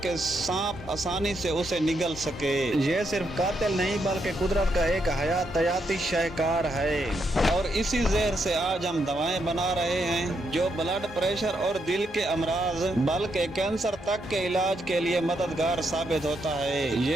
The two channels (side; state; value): both; normal; correlation 0.79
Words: सांप आसानी से उसे निगल सके। ये सिर्फ कातिल नहीं बल्कि कुदरत का एक हयातियाती शाहकार है। और इसी जहर से आज हम दवाएं बना रहे हैं जो ब्लड प्रेशर और दिल के अमराज बल्कि कैंसर तक के इलाज के लिए मददगार साबित होता है।